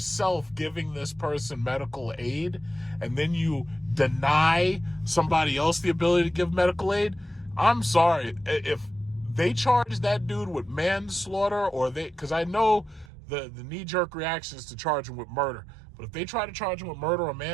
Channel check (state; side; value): drops out; left; at 13.1 s